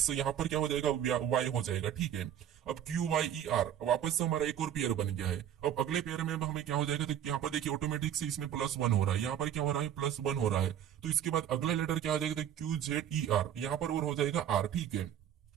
यहाँ पर क्या हो जाएगा, वाई हो जाएगा, ठीक है। अब क्यू वाई ई आर वापस से हमारा एक और पेयर बन गया है। अब अगले पेयर में हमें क्या हो जाएगा, तो यहाँ पर देखिए ऑटोमेटिक से इसमें +1 हो रहा है, यहाँ पर क्या हो रहा है, +1 हो रहा है। तो इसके बाद अगला लेटर क्या हो जाएगा, तो क्यू जेड ई आर, यहाँ पर और हो जाएगा आर, ठीक है।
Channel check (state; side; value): quieter; left; 10.1 dB